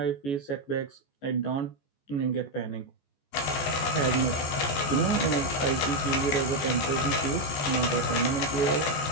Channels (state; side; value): late; right; 14 ms